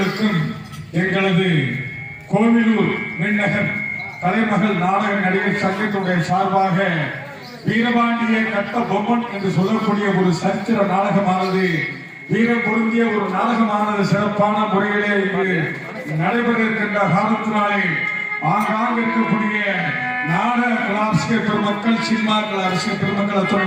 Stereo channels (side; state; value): both; identical; correlation 1.00